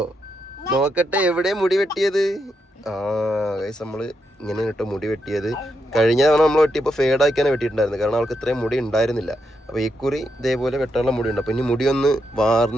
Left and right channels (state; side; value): normal; both; correlation 0.82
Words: നോക്കട്ടെ, എവിടെ മുടി വെട്ടിയത്? ഗൈസ്, നമ്മള് ഇങ്ങനെ കേട്ടോ മുടി വെട്ടിയത്. കഴിഞ്ഞ തവണ നമ്മൾ വെട്ടിയപ്പോൾ ഫേഡാക്കിയാണ് വെട്ടിയിട്ടുണ്ടായിരുന്നു, കാരണം അവൾക്ക് ഇത്രയും മുടി ഉണ്ടായിരുന്നില്ല. അപ്പോൾ ഈ കുറി ഇതേപോലെ വെട്ടാനുള്ള മുടി ഉണ്ട്. അപ്പോൾ ഇനി മുടി ഒന്ന്